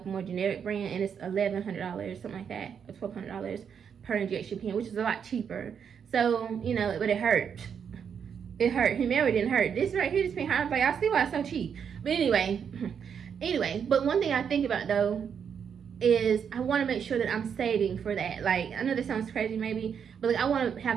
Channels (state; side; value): quieter; left; 7.4 dB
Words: a more generic brand, and it's $1,100, something like that, or $1,200 per injection pen, which is a lot cheaper. So, but it hurt. It hurt. Humira didn't hurt. This right here, this pen hurt. Like, I see why it's so cheap. But anyway, but one thing I think about though is I want to make sure that I'm saving for that. Like, I know this sounds crazy maybe, but like, I want to